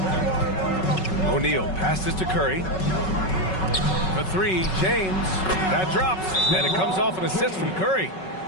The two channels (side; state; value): right; late; 5.3 ms